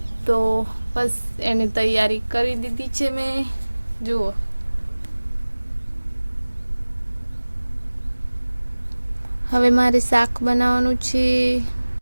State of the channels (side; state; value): both; inverted; correlation -1.00